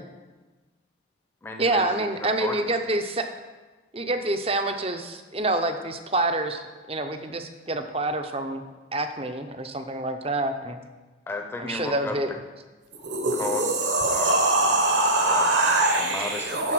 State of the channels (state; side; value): normal; both; correlation -0.08